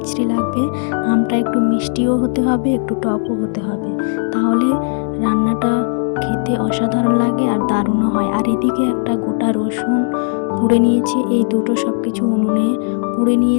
লাগবে। আমটা একটু মিষ্টিও হতে হবে, একটু টকও হতে হবে, তাহলে রান্নাটা খেতে অসাধারণ লাগে আর দারুণও হয়। আর এদিকে একটা গোটা রসুন পুড়ে নিয়েছে, এই দুটো সব কিছু উনুনে পুড়ে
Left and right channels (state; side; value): silent; right; 68 dB below the other